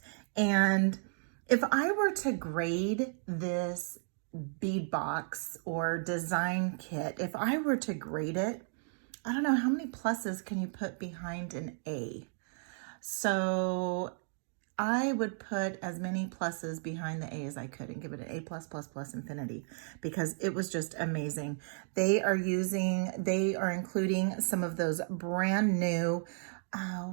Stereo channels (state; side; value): silent; left; 55 dB below the other